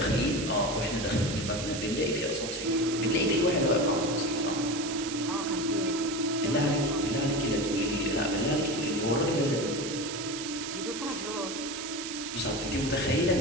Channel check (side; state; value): right; noise; hiss, 7 dB below the sound